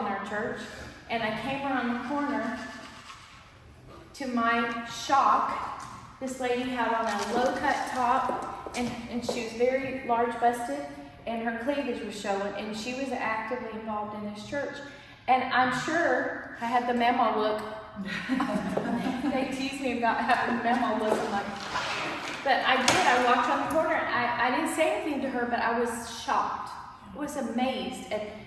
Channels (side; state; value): both; identical; correlation 1.00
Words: our church, and I came around the corner. To my shock, this lady had on a low-cut top, and she was very large-busted, and her cleavage was showing, and she was actively involved in this church. And I'm sure I had the memo look. They tease me about having the memo look, but I did. I walked on the corner. I didn't say anything to her, but I was shocked. I was amazed. And